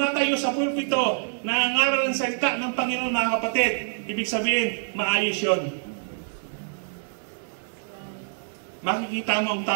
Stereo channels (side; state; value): left; silent; digital silence